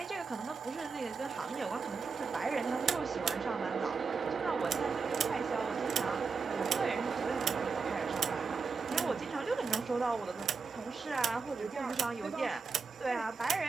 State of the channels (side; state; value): left; quieter; 5.1 dB